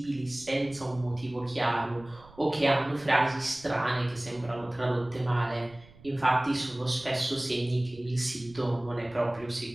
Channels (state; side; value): noise; right; rumble, 23 dB below the sound